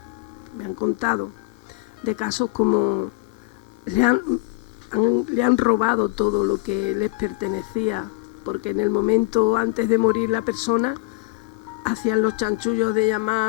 me han contado, de casos como le han robado todo lo que les pertenecía, porque en el momento antes de morir la persona hacían los chanchullos de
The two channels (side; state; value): right; quieter; 21.5 dB